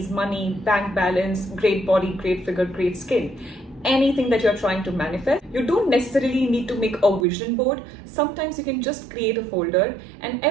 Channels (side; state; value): left; drops out; at 7.2 s